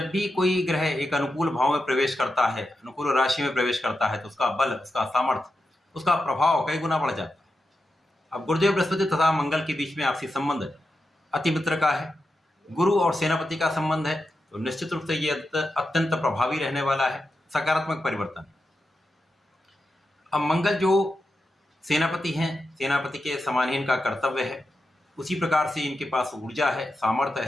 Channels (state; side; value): normal; both; correlation 0.89